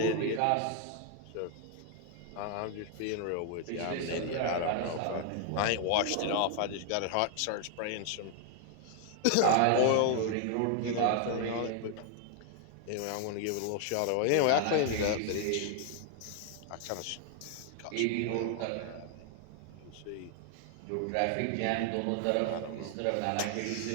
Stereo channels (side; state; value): both; different; correlation 0.00